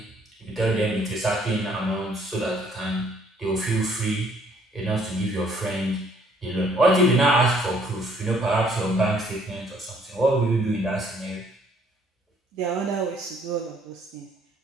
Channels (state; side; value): normal; both; correlation 0.63